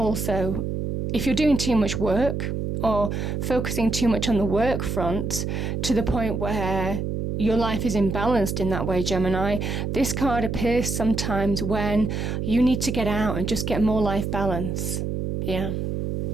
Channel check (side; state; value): right; noise; hum, 2 dB below the sound